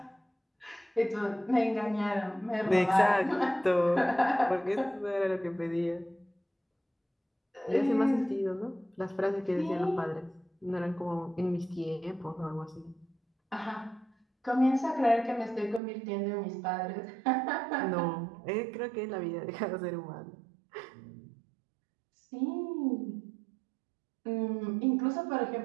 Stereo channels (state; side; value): drops out; left; at 15.8 s